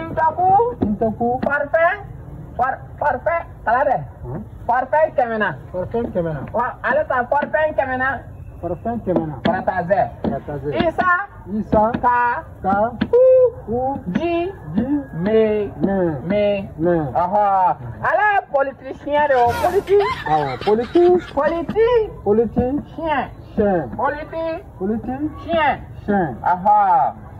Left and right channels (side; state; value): both; identical; correlation 1.00